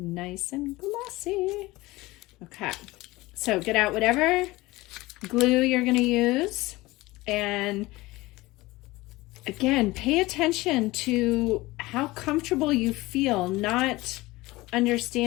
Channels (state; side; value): quieter; right; 20.2 dB